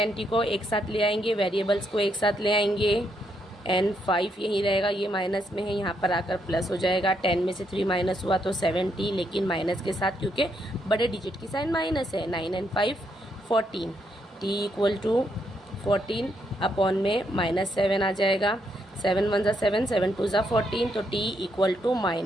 को एक साथ ले आएंगे, वेरिएबल्स को एक साथ ले आएंगे। एंड 5 यहीं रहेगा, ये माइनस में है, यहाँ पर आकर प्लस हो जाएगा। 10 में से 3 माइनस हुआ तो 7t, लेकिन माइनस के साथ क्योंकि बड़े डिजिट की साइन माइनस है। 9 and 5 14, t = 14 अपॉन में -7 आ जाएगा। 7 1 ज़ा 7, 7 2 ज़ा 14, तो t =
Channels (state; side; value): normal; both; correlation 0.77